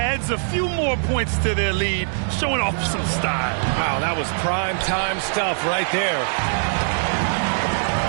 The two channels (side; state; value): left; silent; digital silence